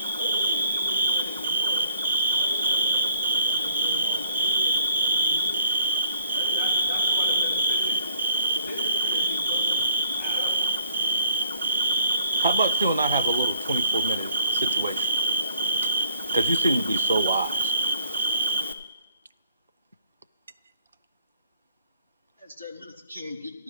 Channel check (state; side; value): inverted; both; correlation -0.58